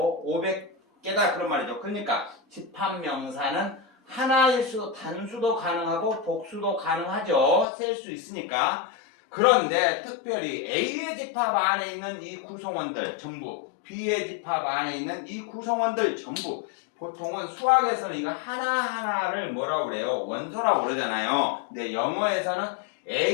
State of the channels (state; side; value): drops out; right; at 7.7 s